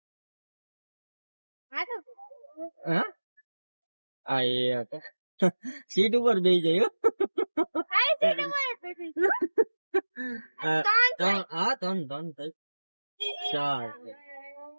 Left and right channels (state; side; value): inverted; both; correlation -1.00